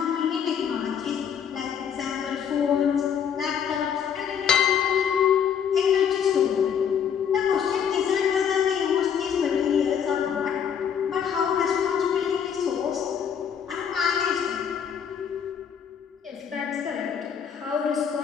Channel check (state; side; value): quieter; right; 7.9 dB